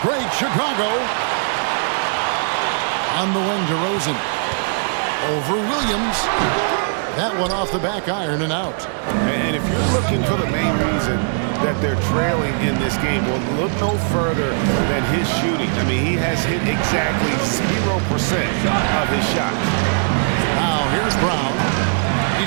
break, Chicago. On the wing, DeRozan. Over Williams. That one off the back iron and out. And if you're looking for the main reason that they're trailing in this game, well, look no further than his shooting. I mean, he has hit exactly 0% of his shots. Now, here's Brown.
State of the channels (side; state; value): left; silent; 66 dB below the other